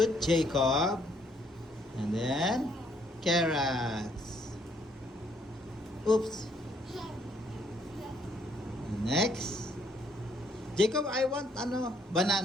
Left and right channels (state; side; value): normal; both; correlation 0.68